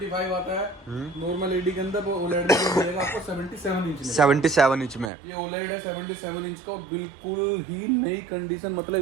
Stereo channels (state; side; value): drops out; left; at 5.1 s